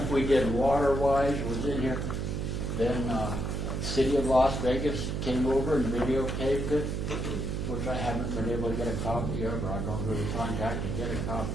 we did Water-Wise was in here. Then City of Las Vegas came over and videotaped it, which I haven't been able to get a copy of, or I've gone through the contact to get a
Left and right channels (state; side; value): noise; right; hum, 2 dB below the sound